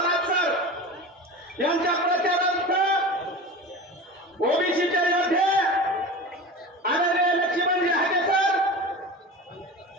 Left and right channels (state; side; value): normal; both; correlation 0.32